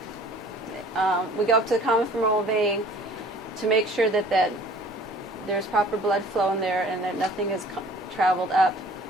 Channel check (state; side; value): normal; both; correlation 0.51